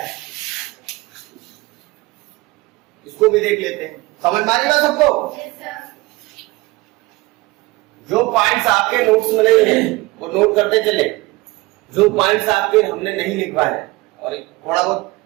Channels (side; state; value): left; quieter; 21.7 dB